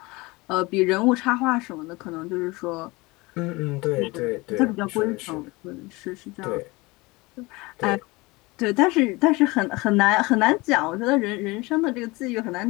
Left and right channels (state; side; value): quieter; right; 23.5 dB